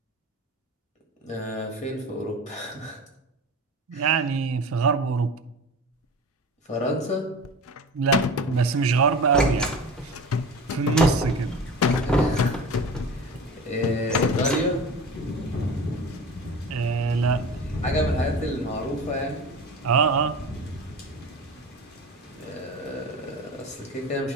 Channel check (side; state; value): both; normal; correlation 0.34